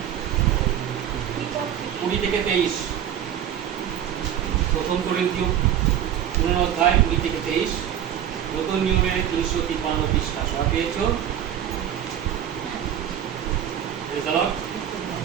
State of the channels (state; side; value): quieter; left; 10.2 dB